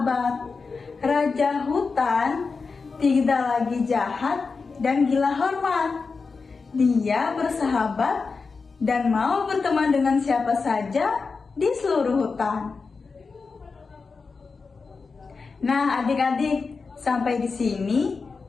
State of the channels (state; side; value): quieter; right; 4.6 dB